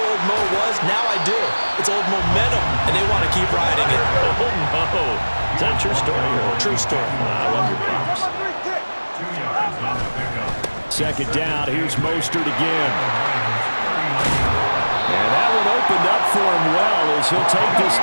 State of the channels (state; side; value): inverted; both; correlation -1.00